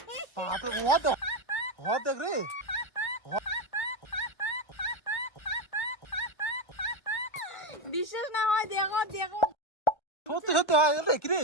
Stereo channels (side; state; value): right; late; 1.3 ms